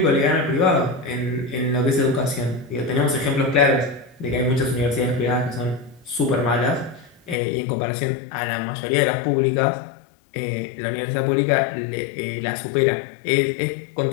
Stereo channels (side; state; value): right; drops out; at 7.4 s